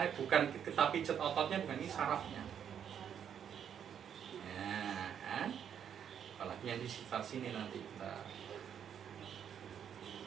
bukan kita pijet ototnya, bukan ini sarafnya. Nah, kan? Apalagi yang di sekitar sini nanti kita.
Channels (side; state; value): left; quieter; 8.6 dB